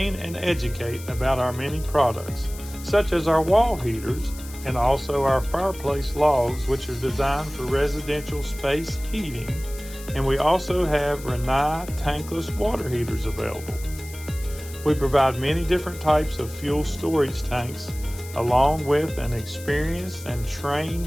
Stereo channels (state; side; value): noise; left; hiss, 16 dB below the sound